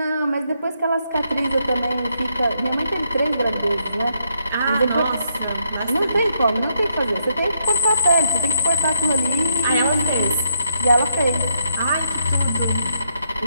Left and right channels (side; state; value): both; inverted; correlation -0.73